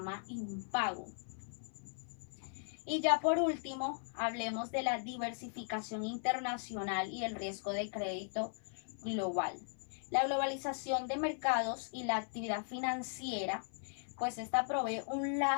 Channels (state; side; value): silent; right; 52 dB below the other